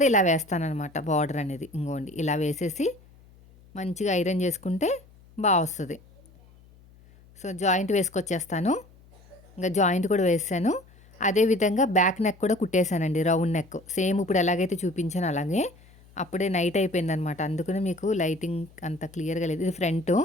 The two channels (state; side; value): noise; left; hum, 26 dB below the sound